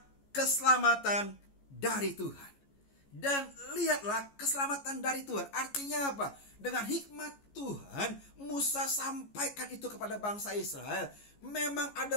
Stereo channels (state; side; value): late; right; 14 ms